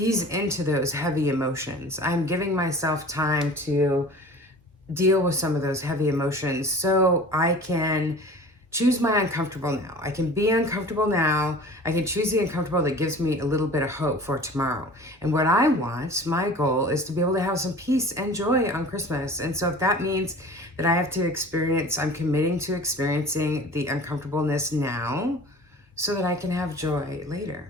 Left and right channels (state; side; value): normal; both; correlation 0.42